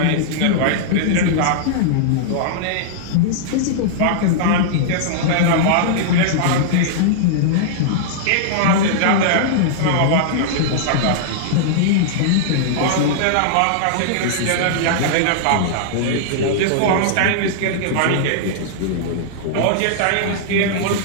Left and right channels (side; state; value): both; different; correlation -0.02